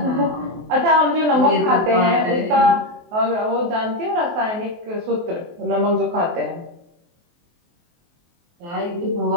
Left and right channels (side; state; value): left; late; 23 ms